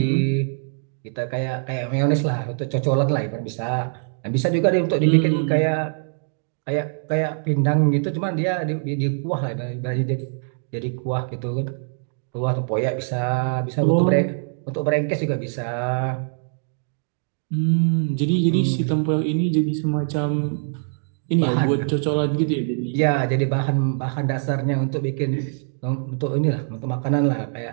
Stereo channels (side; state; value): left; silent; digital silence